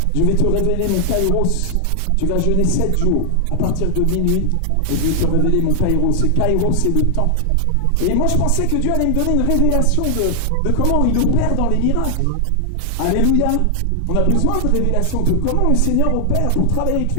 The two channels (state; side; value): different; both; correlation 0.00